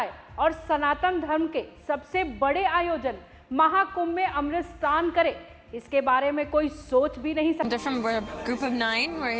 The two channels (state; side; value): identical; both; correlation 1.00